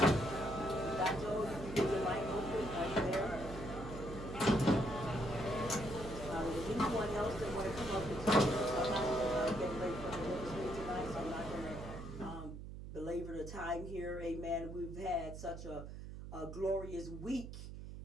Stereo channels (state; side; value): noise; right; hum, 10 dB below the sound